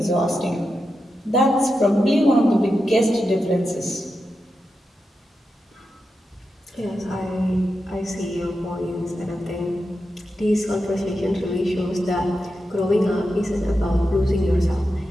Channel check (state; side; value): normal; both; correlation 0.89